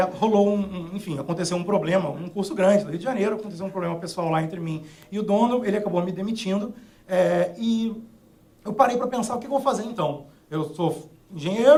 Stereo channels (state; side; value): identical; both; correlation 1.00